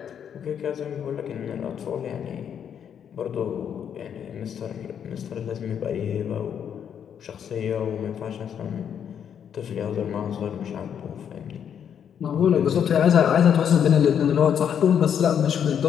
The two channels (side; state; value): right; quieter; 8.4 dB